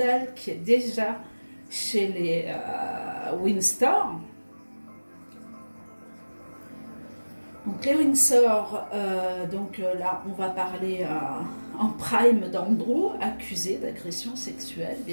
qui est déjà chez les Windsor. Donc les Windsor, là on va parler en prime d'Andrew, accusé d'agression sexuelle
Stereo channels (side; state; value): both; inverted; correlation -1.00